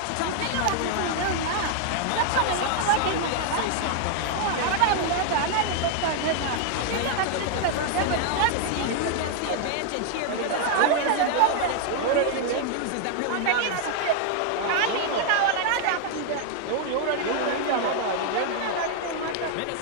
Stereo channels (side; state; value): both; different; correlation 0.00